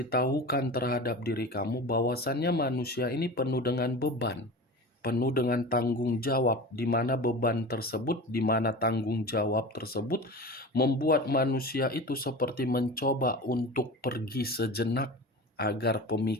terhadap diri kamu bahwasannya manusia ini penuh dengan beban, penuh dengan tanggung jawab, di mana beban tersebut, di mana tanggung jawab tersebut membuat manusia itu seperti mencoba untuk pergi sejenak agar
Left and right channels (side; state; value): both; normal; correlation 0.32